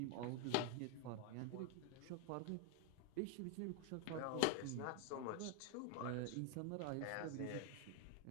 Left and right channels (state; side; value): different; both; correlation 0.01